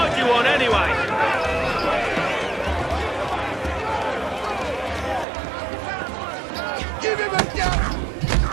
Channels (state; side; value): drops out; left; at 5.2 s